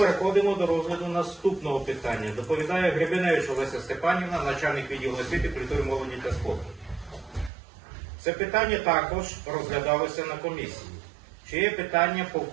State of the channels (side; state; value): left; drops out; at 7.5 s